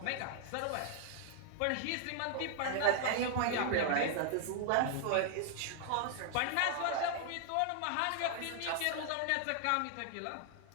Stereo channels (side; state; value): both; different; correlation -0.01